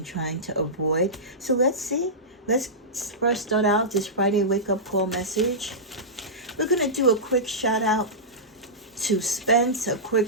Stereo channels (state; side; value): normal; both; correlation -0.15